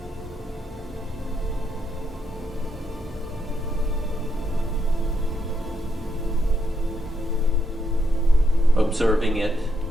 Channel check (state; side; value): normal; both; correlation 0.78